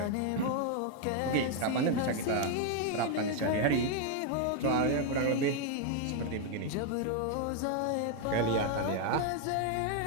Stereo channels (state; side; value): different; both; correlation 0.01